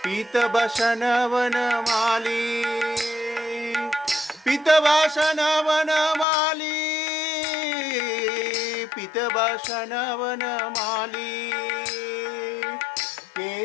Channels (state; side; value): drops out; right; at 6.2 s